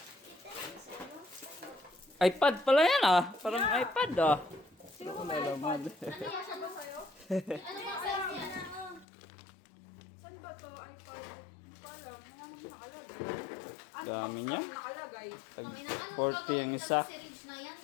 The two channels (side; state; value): right; drops out; at 9.1 s